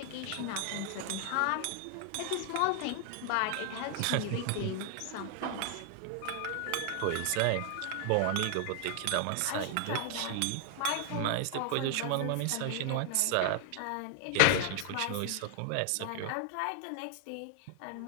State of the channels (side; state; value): both; different; correlation 0.00